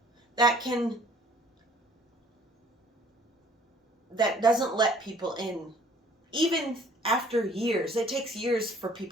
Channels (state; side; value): normal; both; correlation 0.56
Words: that doesn't let people in. Even after years, it takes years for